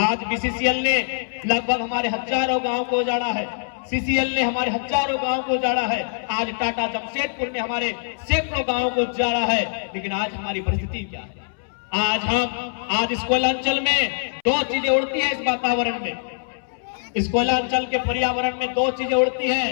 बीसीसीएल ने लगभग हमारे हजारों गांव को उजाड़ा है, सीसीएल ने हमारे हजारों गांव को उजाड़ा है, आज टाटा जमशेदपुर ने हमारे सैकड़ों गांव को उजाड़ा है। लेकिन आज हमारी परिस्थिति क्या है? आज इस कोयलांचल में 2 चीजें उड़ती है। इस वातावरण में, इस कोयलांचल के पर्यावरण में 2 चीजें उड़ती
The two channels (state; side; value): silent; right; 63 dB below the other